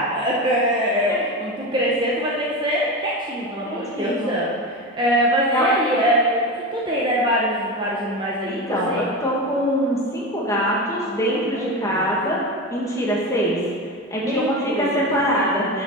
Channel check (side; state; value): both; normal; correlation 0.22